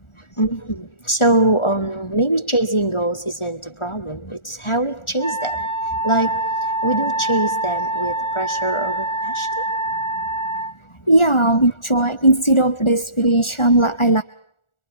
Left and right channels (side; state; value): right; late; 1.4 ms